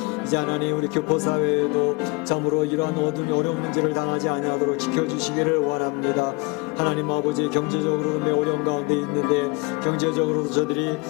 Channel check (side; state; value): right; quieter; 27.6 dB